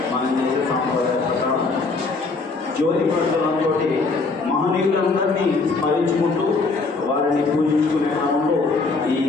మనం చేసే సాంప్రదాయ ప్రకారం జ్యోతి ప్రజ్వలంతో మహనీయులందరినీ స్మరించుకుంటూ వారిని పూజించుకునే క్రమంలో ఈ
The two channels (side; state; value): right; quieter; 3.9 dB